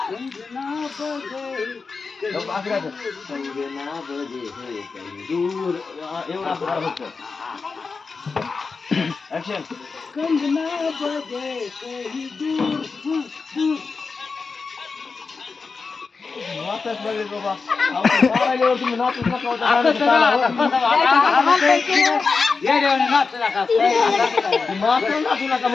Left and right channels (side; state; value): right; quieter; 4.6 dB